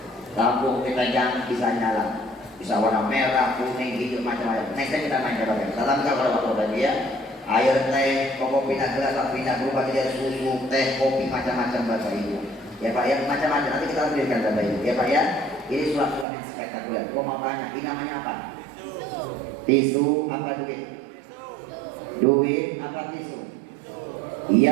Lampu kita jangan bisa nyala, bisa warna merah, kuning, hijau, macam-macam. Next time kita main coba. Tetap kalau waktu tadi ya, air teh, kopi pindah gelas, pindah berubah jadi susu, teh, kopi, macam-macam Bapak Ibu. Ya Pak ya, macam-macam. Nanti kita berikan Bapak Ibu. Ya Pak ya, ini sulap-sulap yang spektakuler. Kau mau tanya, ini namanya apa? Tisu apa duit? Duit apa tisu?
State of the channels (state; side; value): drops out; left; at 16.2 s